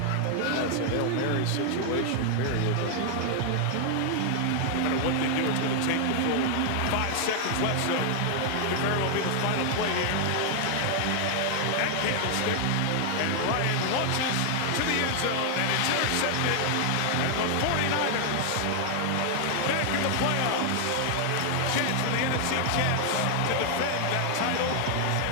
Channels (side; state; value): both; different; correlation 0.00